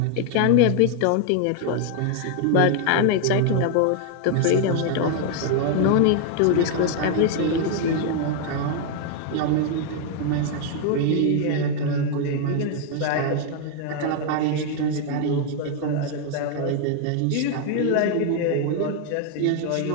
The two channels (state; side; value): different; both; correlation 0.00